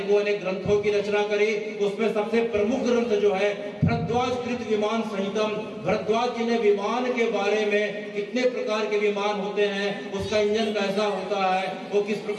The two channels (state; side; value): identical; both; correlation 1.00